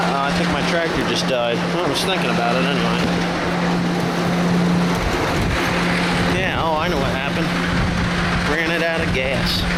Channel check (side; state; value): both; identical; correlation 1.00